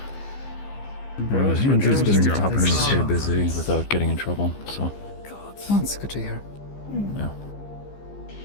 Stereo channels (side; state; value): right; late; 15 ms